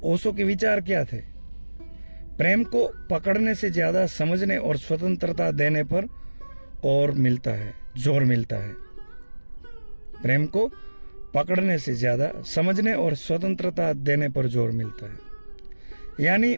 ओशो के विचार क्या थे? प्रेम को पकड़ने से ज्यादा समझने और स्वतंत्रता देने पर जोर मिलता है। प्रेम को पकड़ने से ज्यादा समझने और स्वतंत्रता देने पर जोर मिलता है। यानी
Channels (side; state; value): both; inverted; correlation -1.00